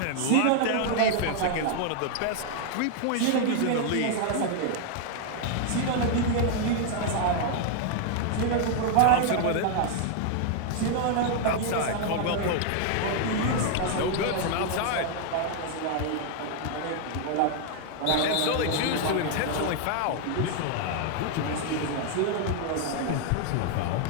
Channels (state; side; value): different; both; correlation 0.00